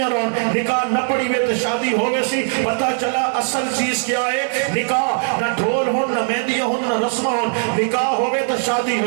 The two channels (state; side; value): silent; left; 57 dB below the other